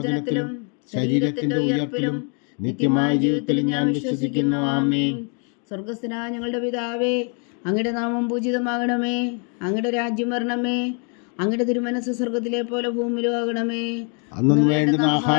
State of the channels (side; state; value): right; quieter; 39.4 dB